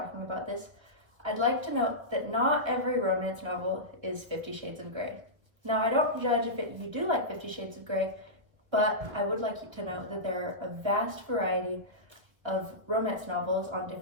about this. I'd like to note that not every romance novel is 50 Shades of Grey. Now I don't judge if you do like 50 Shades of Grey, but I would like you to know that there are a vast variety of romance novels on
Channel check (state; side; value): late; left; 1.3 ms